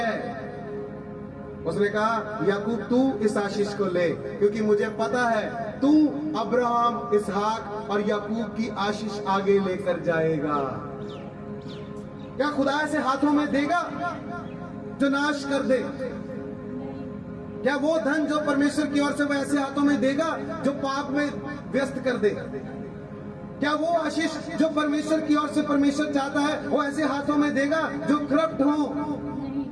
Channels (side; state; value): both; identical; correlation 1.00